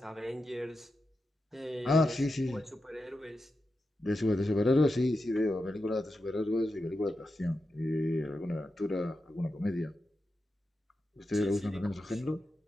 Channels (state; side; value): normal; both; correlation 0.89